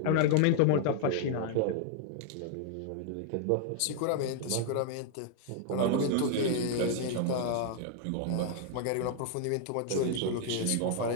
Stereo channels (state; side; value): different; both; correlation 0.00